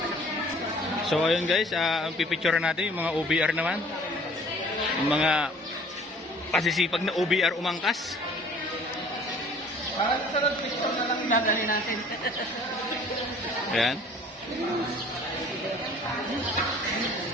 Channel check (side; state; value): both; normal; correlation 0.51